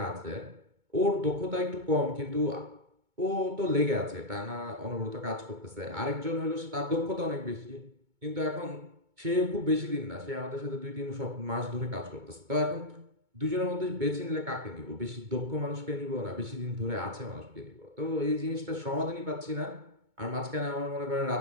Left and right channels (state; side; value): late; left; 2.2 ms